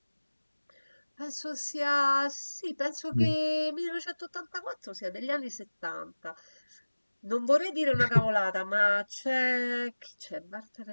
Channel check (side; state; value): both; inverted; correlation -1.00